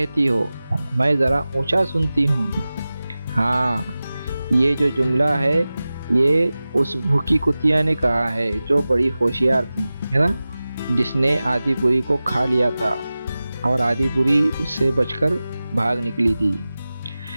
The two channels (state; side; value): inverted; both; correlation -0.96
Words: हो, मैं ज़रा ऊंचा सुनती हूँ। हाँ, ये जो जुमला है ये उस भूखी कुतिया ने कहा है जो बड़ी होशियार थी, है ना, जिसने आदिपुरी को खा लिया था और आदिपुरी उससे बचकर भाग निकली थी।